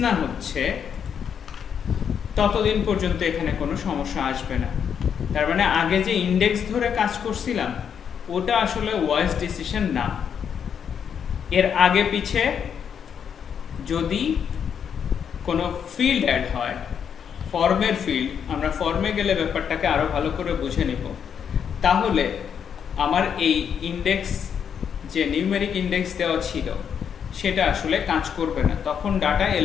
না হচ্ছে ততদিন পর্যন্ত এখানে কোনো সমস্যা আসবে না। তার মানে আগে যে ইন্ডেক্স ধরে কাজ করছিলাম ওটা আসলে ওয়াইজ ডিসিশন না। এর আগে পিছে যদি কোনো ফিল্ড অ্যাড হয়, ফর্মের ফিল্ড, আমরা ফর্মে গেলে ব্যাপারটাকে আরো ভালো করে বুঝে নিব, তাহলে আমার এই ইন্ডেক্স যে নিউমেরিক ইন্ডেক্স দেওয়া ছিল সেটা আসলে কাজ করবে না, তখন ডাটা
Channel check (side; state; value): right; quieter; 7.7 dB